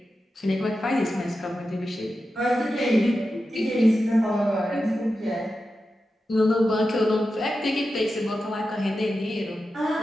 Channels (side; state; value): both; normal; correlation 0.91